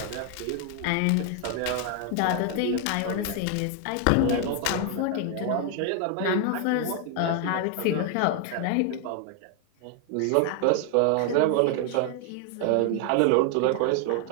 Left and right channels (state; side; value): different; both; correlation 0.00